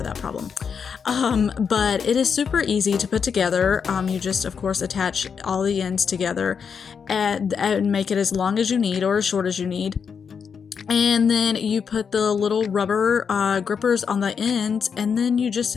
that problem. But it is super easy to put together. You just, of course, attach all the ends together and make it as long as you need or as short as you need. And then you put the little rubber grippers on the ends, and then you just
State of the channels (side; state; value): right; quieter; 6.5 dB